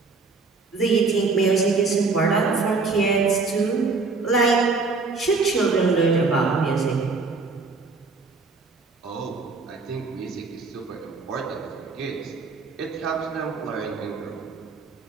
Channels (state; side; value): quieter; left; 4.1 dB